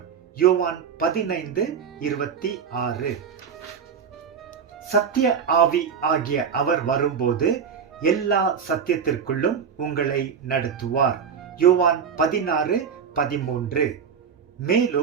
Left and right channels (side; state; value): left; quieter; 6.9 dB